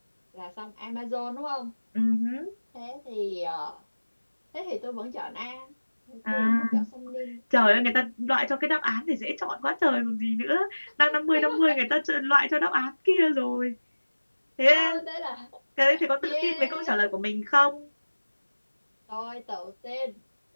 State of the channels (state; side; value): inverted; both; correlation -1.00